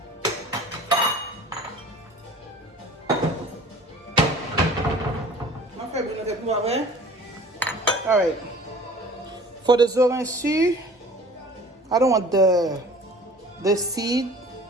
On fait bien avec moi, hein? All right, for the zorancy, I don't want the seed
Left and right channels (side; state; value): both; normal; correlation 0.46